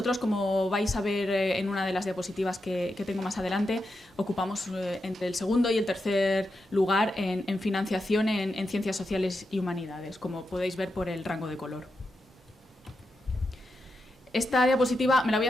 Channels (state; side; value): normal; both; correlation 0.87